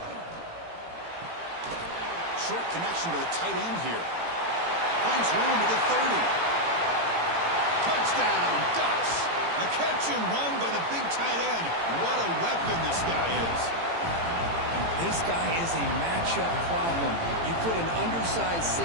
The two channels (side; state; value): left; late; 18 ms